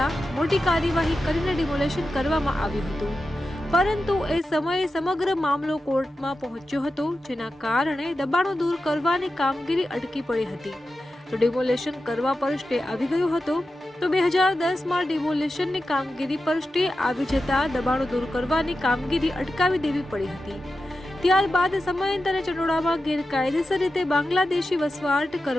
મોટી કાર્યવાહી કરીને ડિમોલેશન કરવામાં આવ્યું હતું, પરંતુ એ સમયે સમગ્ર મામલો કોર્ટમાં પહોંચ્યો હતો, જેના કારણે દબાણો દૂર કરવાની કામગીરી અટકી પડી હતી। તો ડિમોલેશન કરવા પર સ્ટે આવી ગયો હતો। તો 2010માં ડિમોલેશનની કામગીરી પર સ્ટે આવી જતા દબાણો દૂર કરવાની કામગીરી અટકાવી દેવી પડી હતી। ત્યારબાદ સમયાંતરે ચનોડામાં ગેરકાયદેસર રીતે બાંગ્લાદેશી વસવાટ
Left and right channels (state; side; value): normal; both; correlation 0.91